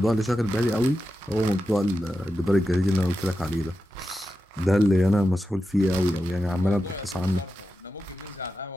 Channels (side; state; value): both; normal; correlation 0.90